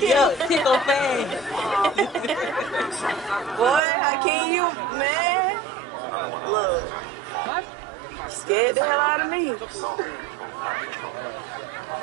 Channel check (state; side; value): drops out; left; at 3.8 s